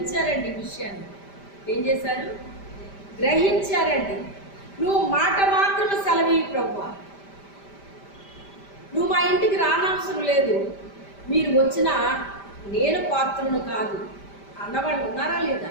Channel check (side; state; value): right; late; 5.1 ms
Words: విషయాన్ని. ఏం చేశారు? గ్రహించారండి. నువ్వు మాట మాత్రం సెలవి ప్రభువా, నువ్వు మా ఇంటికి రానవసరం లేదు, మీరు వచ్చినా నేను పాత్రను కాదు అన్నవాళ్ళు ఉన్నారా